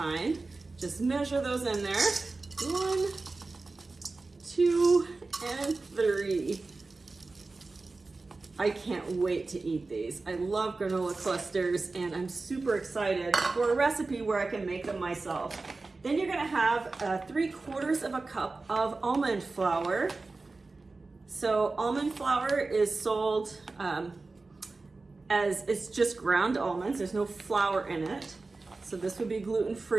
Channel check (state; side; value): quieter; left; 3.6 dB